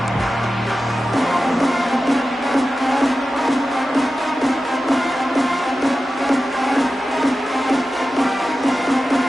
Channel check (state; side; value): normal; both; correlation 0.93